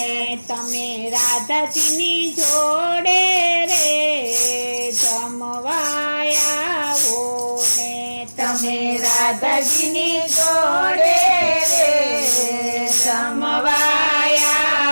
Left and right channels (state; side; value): inverted; both; correlation -1.00